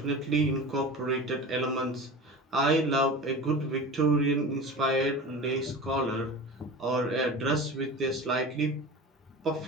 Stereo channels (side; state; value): both; normal; correlation 0.33